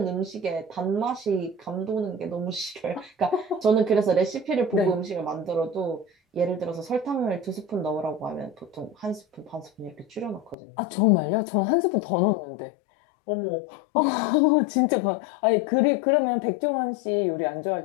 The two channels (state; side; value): drops out; right; at 10.6 s